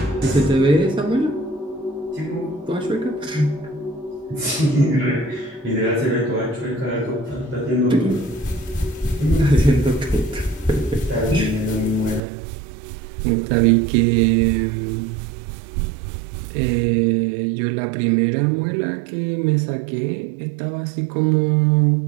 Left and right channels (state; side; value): drops out; left; at 12.2 s